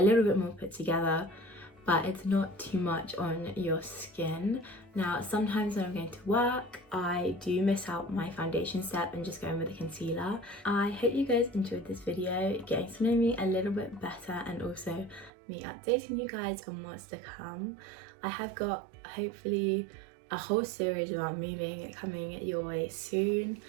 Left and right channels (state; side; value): drops out; left; at 15.3 s